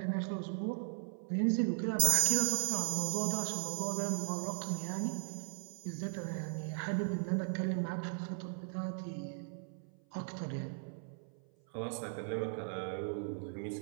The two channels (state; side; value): silent; left; 53 dB below the other